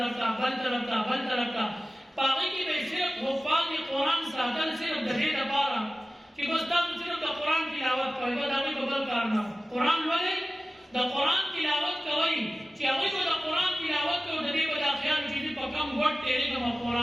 ته، بل طرف ته، بل طرف ته. په هغې کې به یې صرف حفاظ قرآن ساتل صرف د دې لپاره چې بس تاسو صرف د قرآن تلاوت کوئ، بس د هغوی به بل کار نه. قرآن لولئ، د قرآن تلاوت کوئ چې هغوی به د قرآن تلاوت کوي، د دې به دا خیال چې زه په کوم ګټ تېرېږم او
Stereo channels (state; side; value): normal; both; correlation 0.96